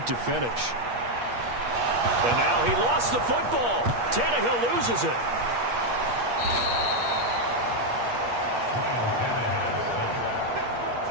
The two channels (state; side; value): late; left; 8.4 ms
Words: to finish. And now he lost the football. Tannehill loses it.